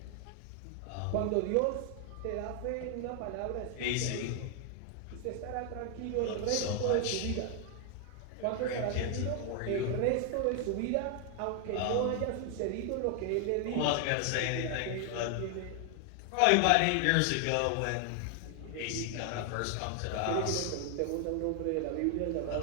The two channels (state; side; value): different; both; correlation 0.00